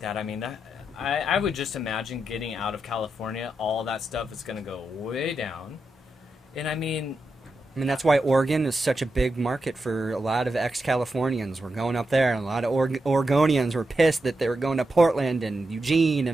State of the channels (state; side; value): normal; both; correlation 0.87